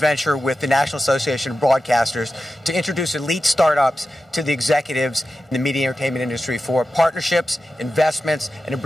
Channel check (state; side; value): normal; both; correlation 0.92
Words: with the National Association of Broadcasters to introduce elite startups to the executives in the media and entertainment industry for partnerships, investments, and to